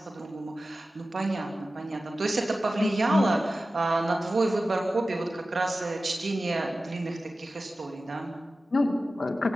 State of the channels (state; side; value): normal; both; correlation 0.95